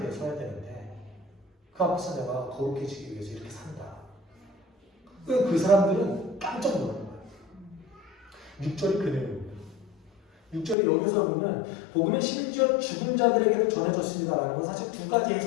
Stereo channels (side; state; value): right; drops out; at 10.8 s